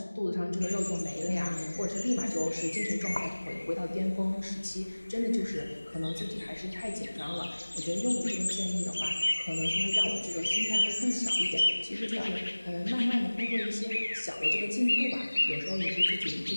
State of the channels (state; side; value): inverted; both; correlation -1.00